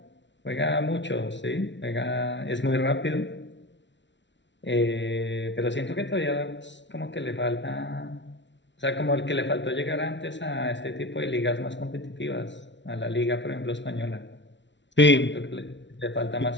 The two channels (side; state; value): right; late; 0.52 ms